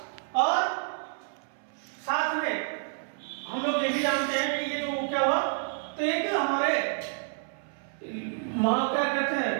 और साथ में हम लोग ये भी जानते हैं कि ये जो क्या हुआ, तो एक हमारे क्या कहते हैं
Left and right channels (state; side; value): silent; left; 59 dB below the other